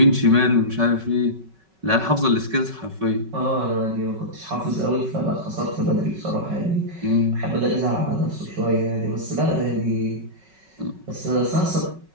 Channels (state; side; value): late; left; 5.3 ms